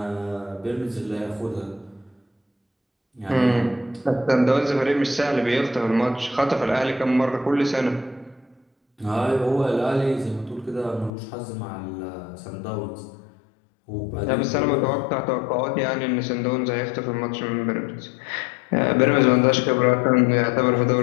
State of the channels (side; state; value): right; drops out; at 11.1 s